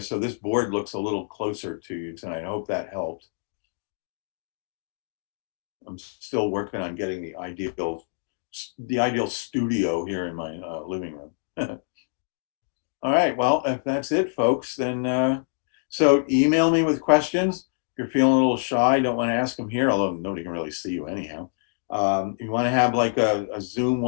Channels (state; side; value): silent; right; digital silence